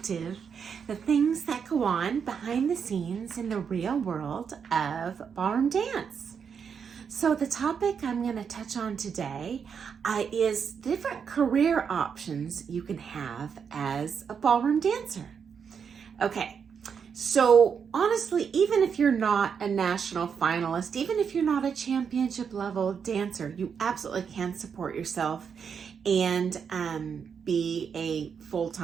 the things that go on behind the scenes in the real world of ballroom dance. So the topic I'm going to touch on today is different career options you can have as a ballroom dancer. Okay, so honestly, even if you're not a national finalist, even if you're not a championship level dancer, you absolutely can support yourself and be a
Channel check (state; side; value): quieter; left; 6.8 dB